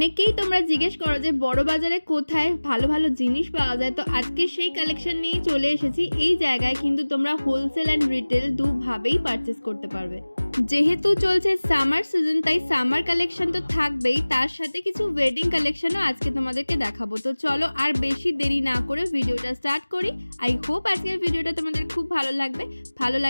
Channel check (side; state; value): both; inverted; correlation -1.00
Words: তোমরা জিজ্ঞেস করো যে বড় বাজারে কোথায় ভালো ভালো জিনিস পাওয়া যায়, তো আজকে সেই কালেকশন নিয়ে চলে এসেছি। এই জায়গায় কিন্তু তোমরা হোলসেল অ্যান্ড রিটেল দুভাবেই পারচেস করতে পারবে। যেহেতু চলছে সামার সিজন, তাই সামার কালেকশন তো থাকবেই, তার সাথে কিছু ওয়েডিং কালেকশনও আজকে তোমাদেরকে দেখাবো। তো চলো আর বেশি দেরি না করে ভিডিওটা স্টার্ট করি। আই হোপ আজকের ভিডিওটা তোমাদের খুব ভালো লাগবে। ভালো